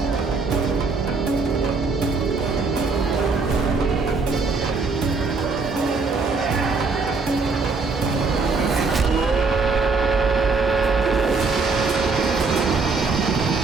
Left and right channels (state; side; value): quieter; left; 4.2 dB